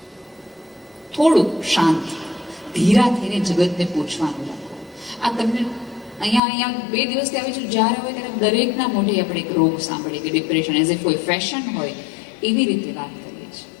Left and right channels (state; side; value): drops out; right; at 6.4 s